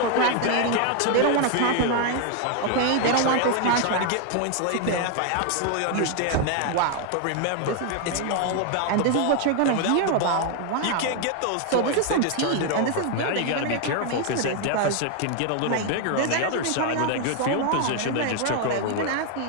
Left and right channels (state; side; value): different; both; correlation 0.00